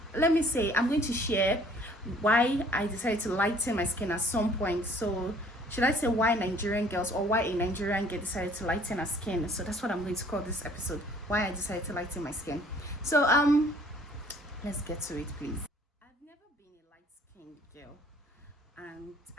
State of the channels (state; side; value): normal; both; correlation 0.57